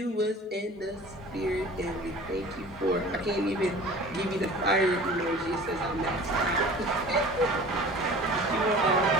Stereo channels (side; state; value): both; normal; correlation 0.43